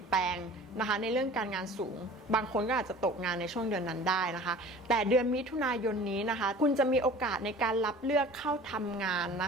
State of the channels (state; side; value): normal; both; correlation 0.43